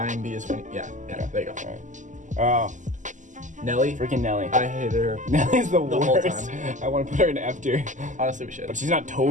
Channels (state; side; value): late; left; 0.36 ms